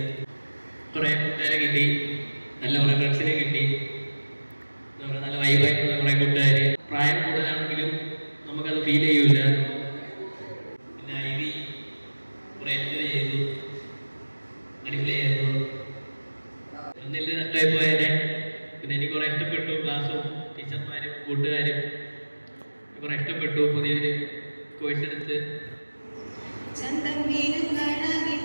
കുറേ കൂട്ടുകാരെ കിട്ടി, നല്ല കുറേ ഫ്രണ്ട്സിനെ കിട്ടി, നല്ല വൈബായിട്ടുള്ള കുറേ കൂട്ടുകാർ. പ്രായം കൂടുതലാണെങ്കിലും നമുക്കത് ഫീൽ ചെയ്യൂല. പിന്നെ ഐവി കുറേ എൻജോയ് ചെയ്തു, അടിപൊളിയായിരുന്നു. ഒന്നിൽ നഷ്ടമായി പോയതിനെ പിന്നെ എനിക്ക് കുറേ ഇഷ്ടപ്പെട്ടു. ക്ലാസ്സും ടീച്ചർമാരും കൂട്ടുകാരും കുറേ ഇഷ്ടപ്പെട്ടു. പുതിയൊരു കോഴ്സ് എടുത്ത് ചന്തം വീരും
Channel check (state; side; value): inverted; both; correlation -1.00